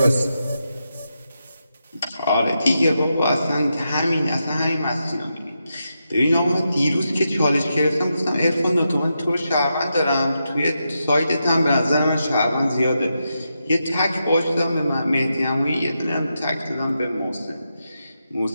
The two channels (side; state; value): both; inverted; correlation -0.86